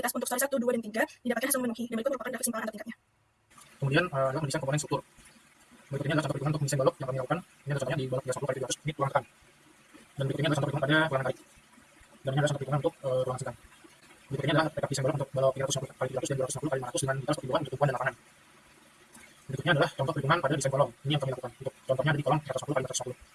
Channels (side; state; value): both; identical; correlation 1.00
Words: untuk story 1, 2, dan 3, didapatkan hasil memenuhi, dan berikut merupakan grafik simpangan antar tingkatnya. Kemudian adalah mendesain komponen struktur. Berikut ini adalah contoh perhitungan untuk mendesain balok yang kami lakukan. Ini adalah contohnya di balok 310 kali 300 ini ruangan tekan. Dan berikut ini adalah contoh perhitungan pada ruangan kait. Dan ini adalah contoh perhitungan untuk ruangan sedang. Berikut ini adalah rekap desain balok untuk balok 350 kali 300 dan 250 kali 500 dengan detail seperti bulan untuk tumpuan dan lapangan. Berikutnya adalah contoh perhitungan pada desain kolom. Ini yang kami lakukan. Untuk contohnya ada di kolom 350 kali